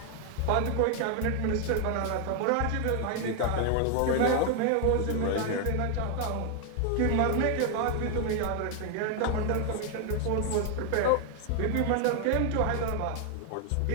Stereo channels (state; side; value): different; both; correlation 0.01